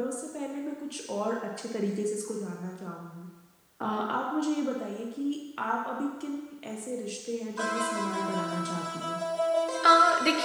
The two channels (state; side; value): identical; both; correlation 1.00